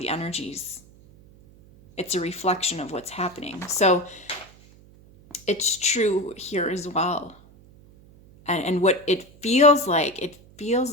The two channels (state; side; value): noise; right; hum, 25 dB below the sound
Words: energies. It's a reflection of what's happening. So it's true here as well. And what it feels